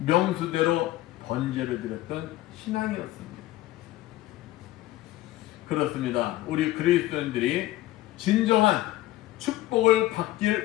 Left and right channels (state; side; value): quieter; right; 16.3 dB